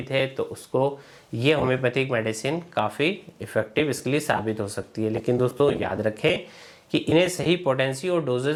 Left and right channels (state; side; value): identical; both; correlation 1.00